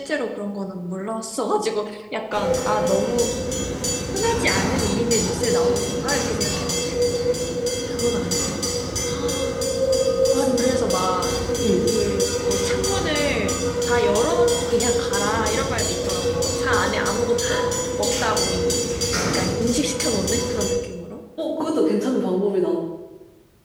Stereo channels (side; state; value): both; identical; correlation 1.00